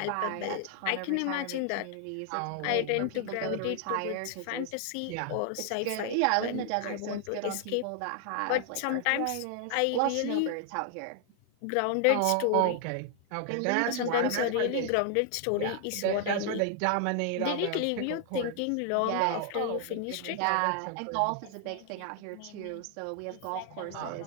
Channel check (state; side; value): different; both; correlation 0.00